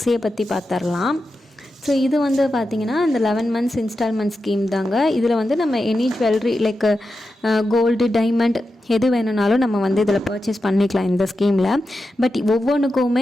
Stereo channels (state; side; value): normal; both; correlation 0.90